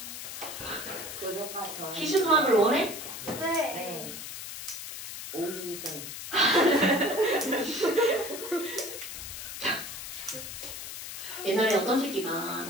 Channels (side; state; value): left; noise; hiss, 9 dB below the sound